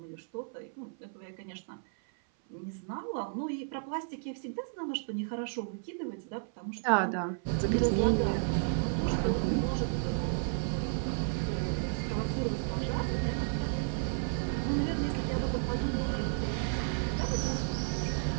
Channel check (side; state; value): left; silent; 56 dB below the other